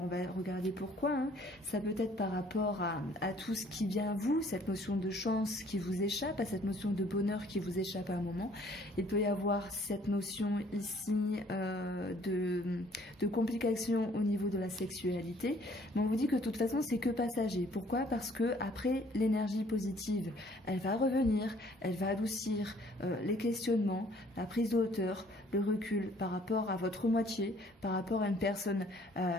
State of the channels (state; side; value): normal; both; correlation 0.59